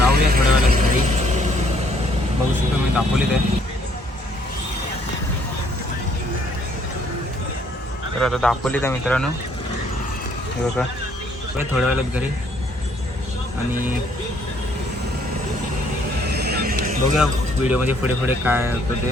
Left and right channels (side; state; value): both; normal; correlation 0.65